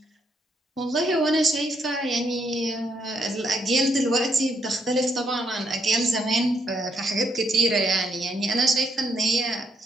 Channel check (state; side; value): normal; both; correlation 0.74